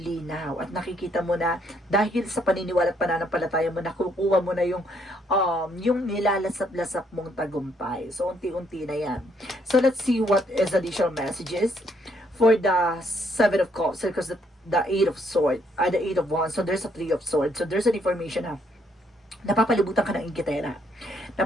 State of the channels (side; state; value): both; normal; correlation 0.70